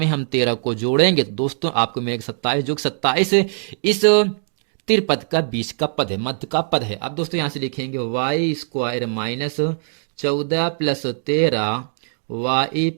हम 13 को जोड़ेंगे तो दोस्तों आपको मिलेगा 27, जो 27 इस त्रिपद का बीच का पद है, मध्य का पद है। अब दोस्तों यहां से लिखेंगे y स्क्वायर -14 + 13 y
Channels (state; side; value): silent; left; digital silence